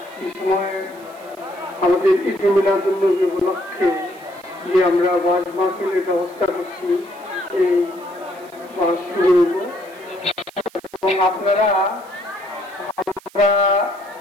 এই সময় আমাদের ঈদ মিলাদুন্নবী উপলক্ষে যে আমরা ওয়াজ মাহফিলের ব্যবস্থা করছি, এই ওয়াজ শুরু হইব এবং আপনারা আমরা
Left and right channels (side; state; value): right; noise; hiss, 25 dB below the sound